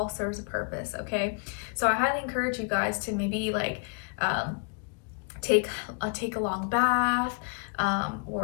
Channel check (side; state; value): right; quieter; 37.9 dB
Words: serves a purpose, okay? So I highly encourage you guys to maybe like take a long bath,